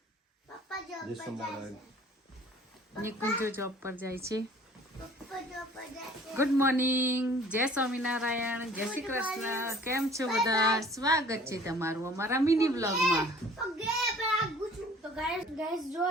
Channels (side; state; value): both; normal; correlation 0.51